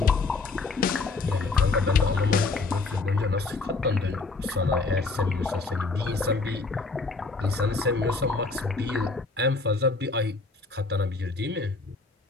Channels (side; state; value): right; quieter; 3.8 dB